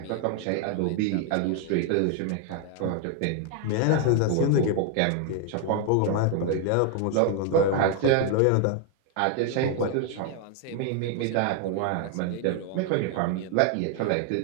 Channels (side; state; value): both; different; correlation 0.00